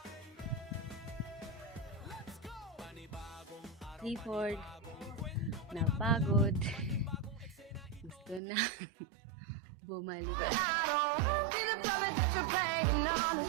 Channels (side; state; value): left; drops out; at 8.4 s